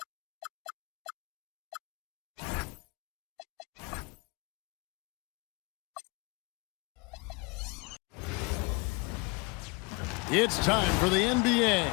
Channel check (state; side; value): quieter; right; 28.4 dB